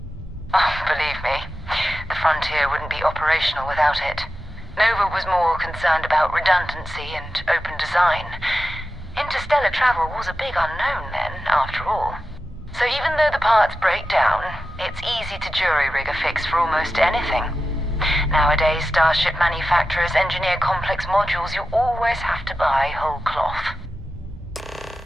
Oh, believe me, the frontier wouldn't be operational without it. Nova was more concerned about redundancy and open design. Interstellar travel was a big unknown then, after all. So even though the parts break down, it's easy to jury-rig a fix for almost anything. Nowadays, starship manufacturers engineer complex modules you always have to buy whole cloth.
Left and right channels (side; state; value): both; normal; correlation 0.92